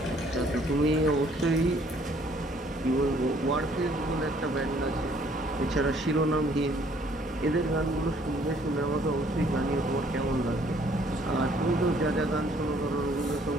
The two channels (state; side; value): normal; both; correlation 0.62